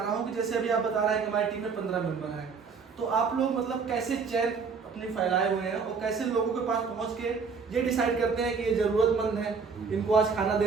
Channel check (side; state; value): left; quieter; 5.3 dB